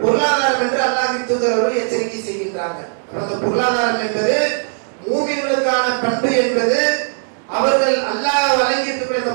பொருளாதாரம் என்று அல்லாஹ்வின் தூதர் அவர்கள் எச்சரிக்கை செய்கின்றாங்க. அந்த பொருளாதாரம் என்பது மூமின்களுக்கான பண்பு என்பது அவர்கள் அல்லாஹ் வழங்கி இருக்கக்கூடிய அந்த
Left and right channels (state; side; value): silent; left; digital silence